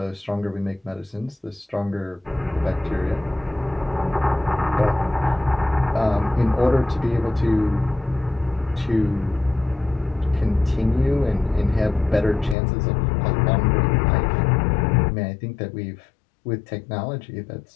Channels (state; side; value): drops out; right; at 12.6 s